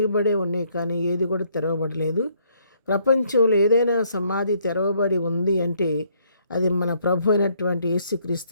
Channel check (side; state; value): both; inverted; correlation -0.68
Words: ఉన్నాయి, కానీ ఏది కూడా తెరవబడలేదు. ప్రపంచంలో ఏదైనా సమాధి తెరవబడి ఉంది అంటే అది మన ప్రభు అయినటువంటి యేసుక్రీస్తు